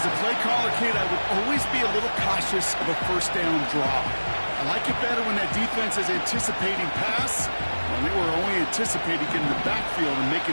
a play caller, Kate, I would always be a little cautious of a first down draw. I like it better when that defense is anticipating pass. Well, they were only anticipating getting the backfield and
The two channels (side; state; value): both; inverted; correlation -1.00